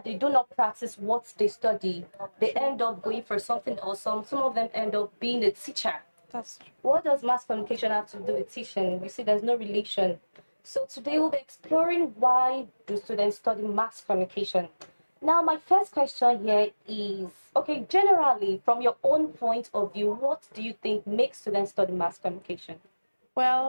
they do not practice what they study. They end up going for something else. Some of them end up being a teacher. That's true. What does mass communication have to do with teaching? You see, there's no relation. So today we'll be exploring why do students study mass communication. Now, my first question here is, okay, generally, from your own point of view, what do you think makes students study mass communication?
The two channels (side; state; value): both; inverted; correlation -1.00